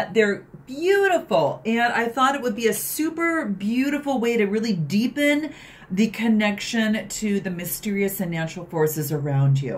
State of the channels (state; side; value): identical; both; correlation 1.00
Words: beautiful, and I thought it would be a super beautiful way to really deepen the connection to the mysterious and natural forces around